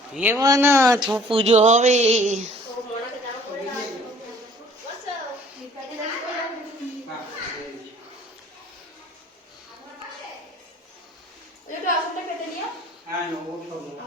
এবার না পুজো হবে।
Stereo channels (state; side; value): normal; both; correlation 0.54